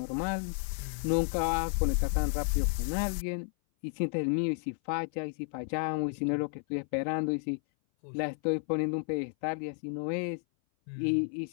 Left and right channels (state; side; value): silent; right; 56 dB below the other